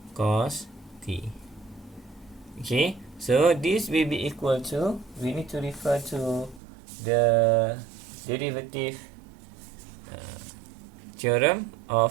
cos t. Okay, so this will be equal to, we need to refer to the derivative theorem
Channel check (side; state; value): left; drops out; at 6.6 s